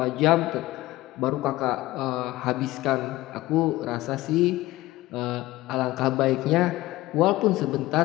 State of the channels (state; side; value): quieter; right; 17.7 dB